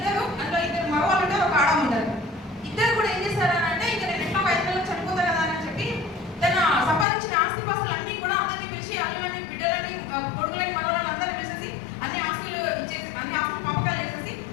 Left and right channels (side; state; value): right; drops out; at 7.1 s